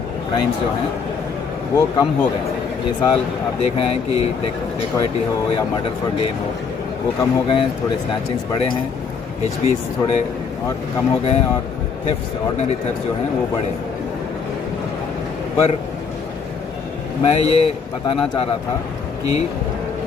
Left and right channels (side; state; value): right; quieter; 5.7 dB